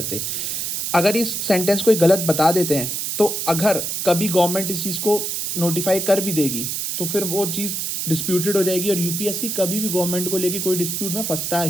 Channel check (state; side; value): noise; right; hiss, 2 dB below the sound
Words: अगर इस सेंटेंस कोई गलत बता देते हैं तो अगर कभी गवर्नमेंट इस चीज़ को नोटिफाई कर भी देगी तो फिर वो चीज़ डिस्प्यूटेड हो जाएगी, और यूपीएससी कभी भी गवर्नमेंट को लेके कोई डिस्प्यूट में फंसता